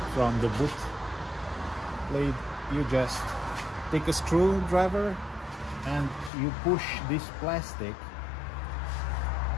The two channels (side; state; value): right; drops out; at 6.3 s